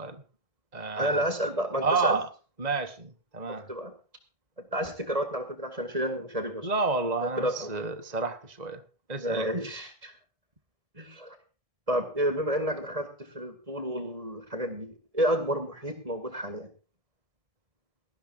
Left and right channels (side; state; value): left; late; 1.6 ms